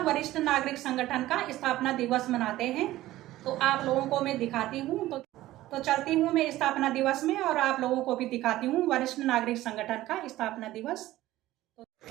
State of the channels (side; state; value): left; quieter; 15.8 dB